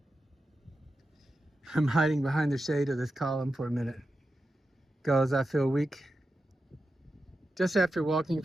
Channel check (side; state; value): both; normal; correlation 0.90